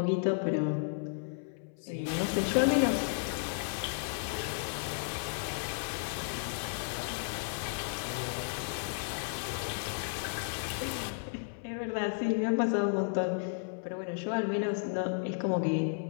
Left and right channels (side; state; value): right; silent; 55 dB below the other